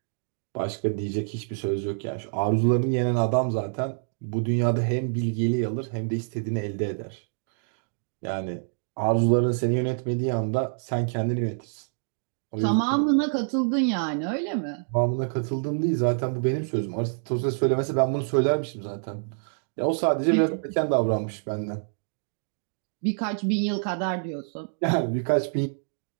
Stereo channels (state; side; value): silent; left; digital silence